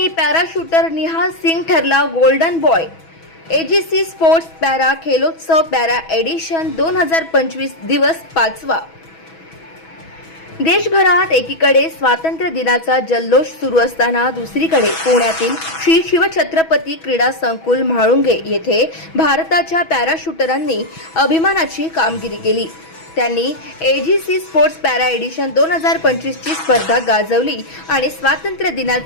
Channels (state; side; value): late; right; 6.1 ms